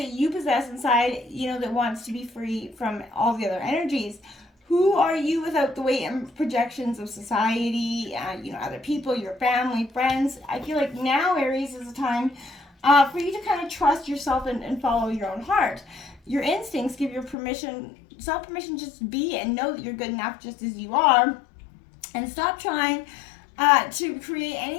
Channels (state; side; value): drops out; right; at 17.4 s